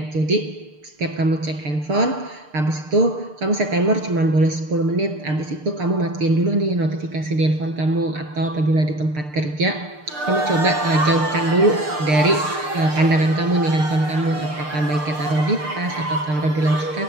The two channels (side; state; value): left; late; 6.6 ms